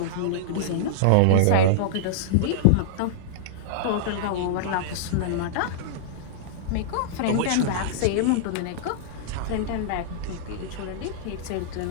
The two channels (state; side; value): different; both; correlation -0.02